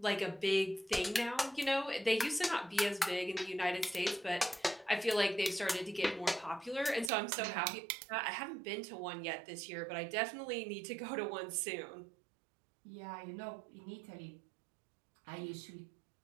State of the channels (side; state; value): left; drops out; at 7.1 s